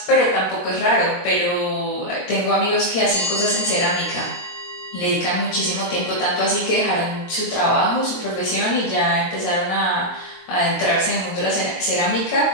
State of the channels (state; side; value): late; right; 23 ms